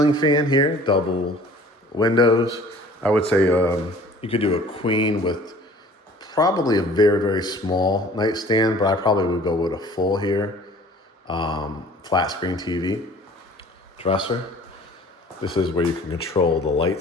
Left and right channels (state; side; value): normal; both; correlation 0.50